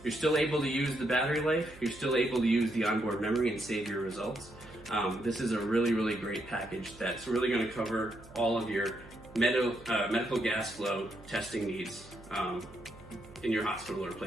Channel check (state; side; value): noise; right; hum, 20 dB below the sound